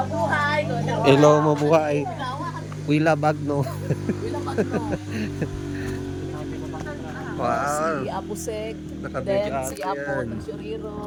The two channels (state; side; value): identical; both; correlation 1.00